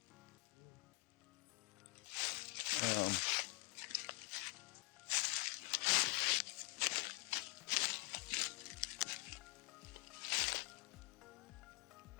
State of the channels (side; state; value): right; quieter; 27.2 dB